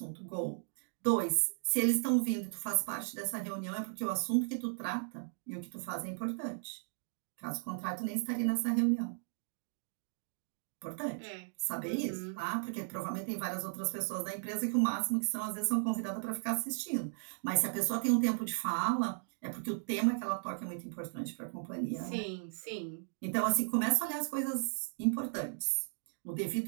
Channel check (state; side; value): silent; left; digital silence